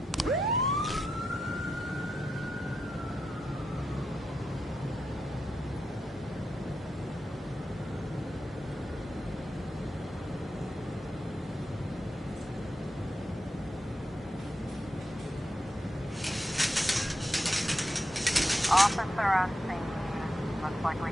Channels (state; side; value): normal; both; correlation 0.87